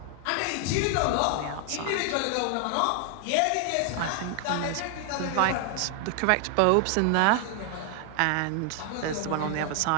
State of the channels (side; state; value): both; different; correlation 0.00